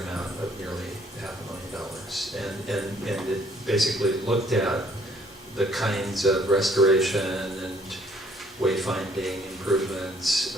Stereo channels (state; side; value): normal; both; correlation 0.63